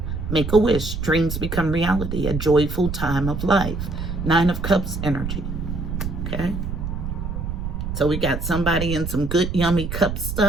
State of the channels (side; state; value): right; noise; rumble, 4 dB below the sound